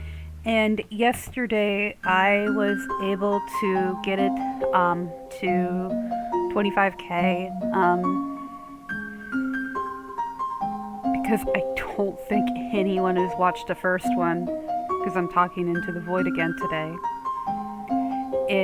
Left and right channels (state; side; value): identical; both; correlation 1.00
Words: And yesterday I was able to get it to 25k because I don't think anyone has watched the first one, because I'm talking into the void again today,